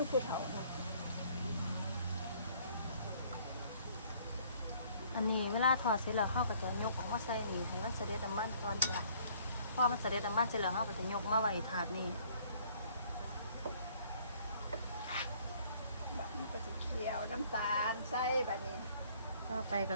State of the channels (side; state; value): both; inverted; correlation -0.59